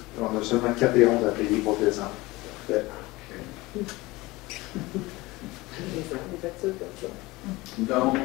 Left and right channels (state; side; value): quieter; right; 21.1 dB